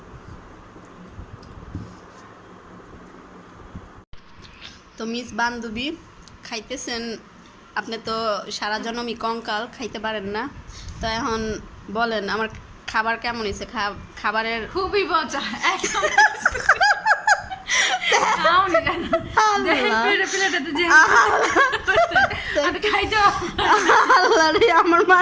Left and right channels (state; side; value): identical; both; correlation 1.00